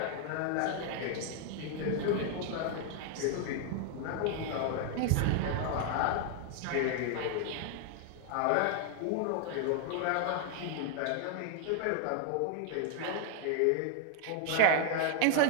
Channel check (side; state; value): both; different; correlation 0.00